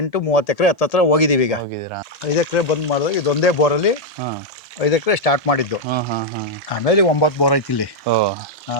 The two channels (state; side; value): normal; both; correlation 0.00